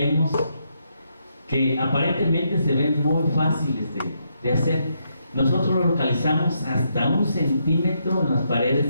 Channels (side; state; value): both; inverted; correlation -0.78